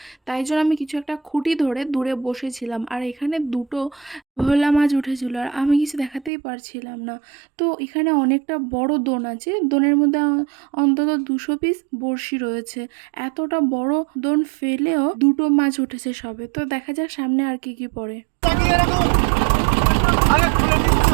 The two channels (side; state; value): left; drops out; at 6.3 s